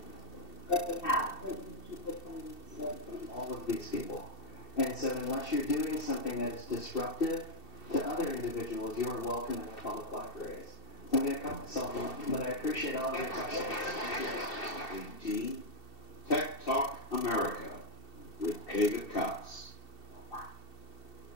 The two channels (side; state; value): right; late; 2.7 ms